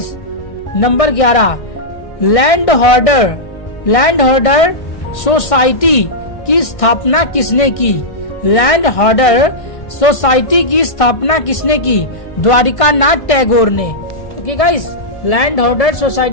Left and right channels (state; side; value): late; right; 1.6 ms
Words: नंबर 11, लैंड होल्डर सोसाइटी की स्थापना किसने की? लैंड होल्डर सोसाइटी की स्थापना किसने की? द्वारिका नाथ टैगोर ने। Okay guys, land holder